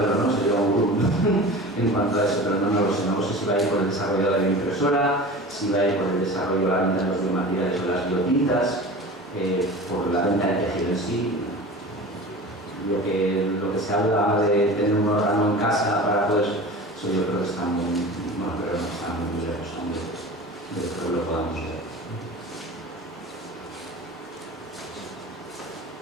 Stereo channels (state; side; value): normal; both; correlation 0.35